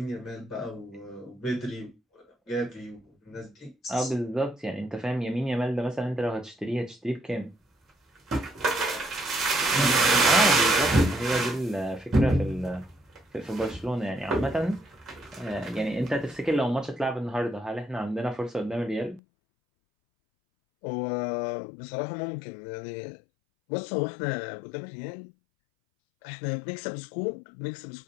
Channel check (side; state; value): right; drops out; at 19.2 s